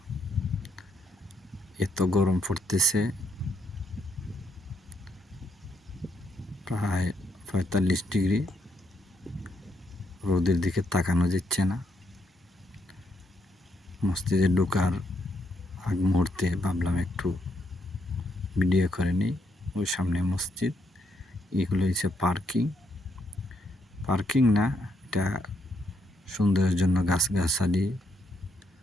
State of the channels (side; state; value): both; normal; correlation 0.76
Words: এত গরম পড়তেছে, প্রায় ৪৫ ডিগ্রি। রোদের দিকে তাকানো যাচ্ছে না। মসজিদে ঢোকার আগ মুহূর্তে ভাবলাম একটু ভিডিও করে নিই। ওই সামনে মসজিদ, এগুলো হচ্ছে পার্কিং না, এটা সৌন্দর্যের জন্য গাছগাছালি,